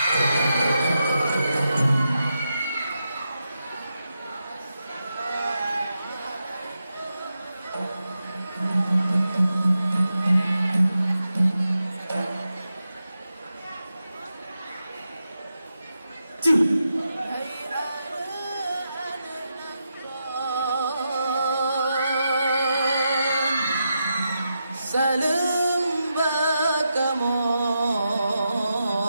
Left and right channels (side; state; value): both; inverted; correlation -0.87